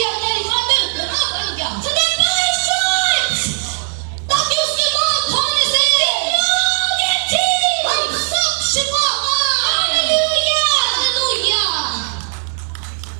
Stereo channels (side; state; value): left; silent; digital silence